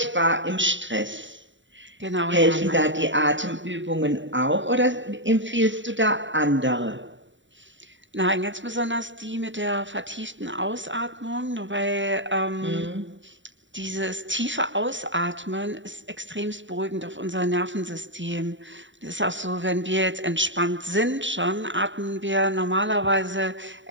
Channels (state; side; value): late; left; 0.54 ms